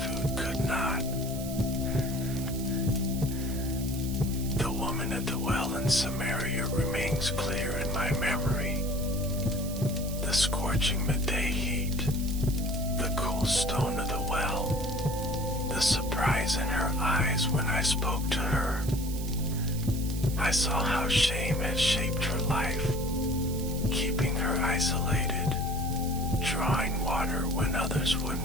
could not. The woman at the well in Samaria remains clear in my memory. The scorching midday heat, the cool stone of the well, the surprise in her eyes when I spoke to her. I saw how shame had shaped her life, keeping her isolated, drawing water when others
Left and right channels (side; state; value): right; noise; hiss, 12 dB below the sound